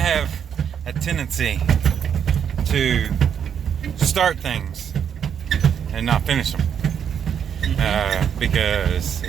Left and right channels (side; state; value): left; quieter; 8.2 dB